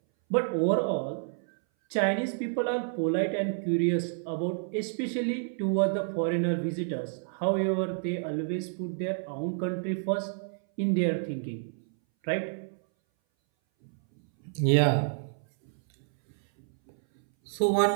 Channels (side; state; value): left; silent; 58 dB below the other